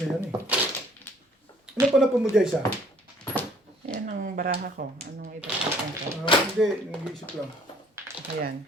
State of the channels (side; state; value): both; normal; correlation 0.58